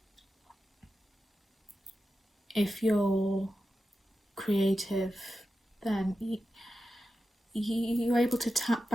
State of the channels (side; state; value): both; normal; correlation 0.91